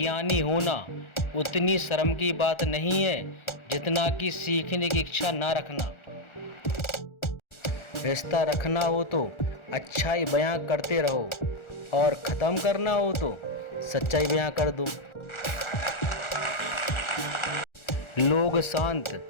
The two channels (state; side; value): late; right; 1.4 ms